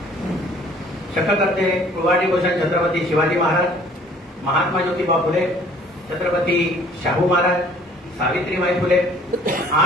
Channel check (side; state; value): both; normal; correlation 0.55